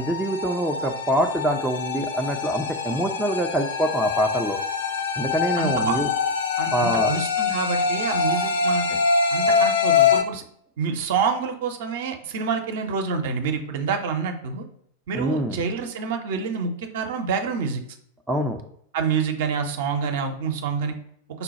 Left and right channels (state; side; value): normal; both; correlation -0.05